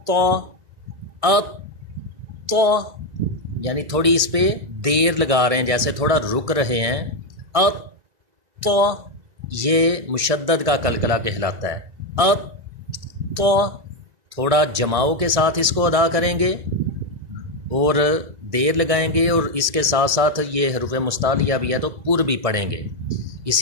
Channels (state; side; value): late; left; 1.6 ms